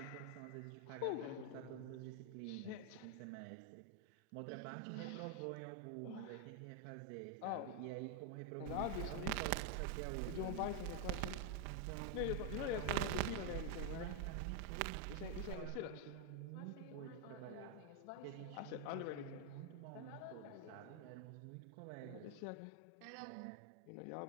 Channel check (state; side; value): different; both; correlation 0.00